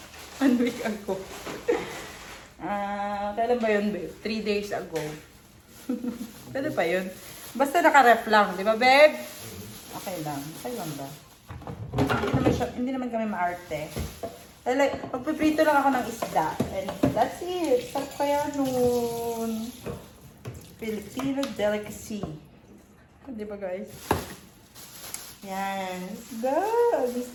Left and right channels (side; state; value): both; identical; correlation 1.00